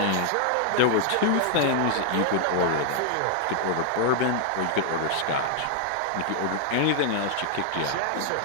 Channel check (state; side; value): different; both; correlation 0.00